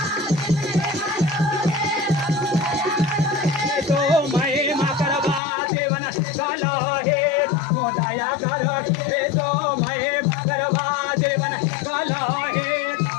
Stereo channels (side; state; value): right; drops out; at 5.4 s